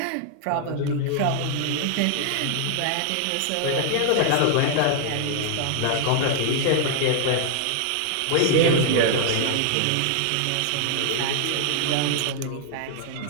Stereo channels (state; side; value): different; both; correlation 0.00